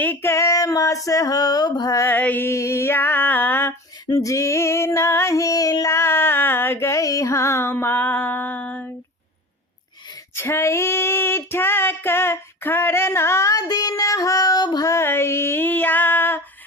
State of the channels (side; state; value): both; normal; correlation 0.35